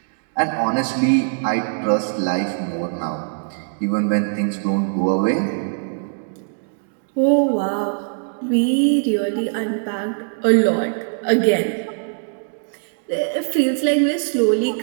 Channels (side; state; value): left; silent; digital silence